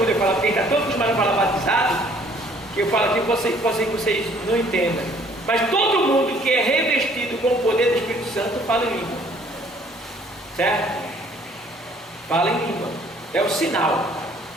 eu falo, porque está todo mundo falar batizado, que eu falo aqui, pode ser que vocês não entendam, mas todo mundo que é revestido com o poder do Espírito Santo fala em língua, certo? Fala em língua, é o sinal,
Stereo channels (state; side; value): normal; both; correlation 0.59